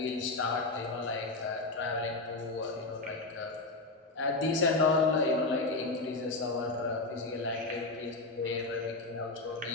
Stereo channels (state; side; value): quieter; right; 3.2 dB